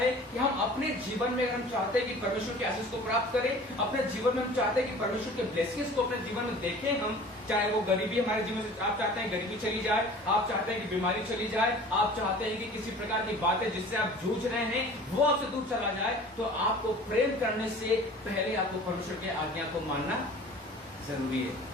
कि हम अपने जीवन में अगर हम चाहते हैं कि परमेश्वर के आशीष को प्राप्त करें, अपने जीवन में हम चाहते हैं कि परमेश्वर के ब्लेसिंग्स को अपने जीवन में देखें, हम चाहे वो गरीबी हमारे जीवन से, आप चाहते हैं गरीबी चली जाए, आप चाहते हैं कि बीमारी चली जाए, आप चाहते हैं कि किसी प्रकार की बातें जिससे आप जूझ रहे हैं वो आपसे दूर चला जाए, तो आपको प्रेम करने से पहले आपको परमेश्वर की आज्ञा को मानना जरूरी है।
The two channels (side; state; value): both; normal; correlation 0.44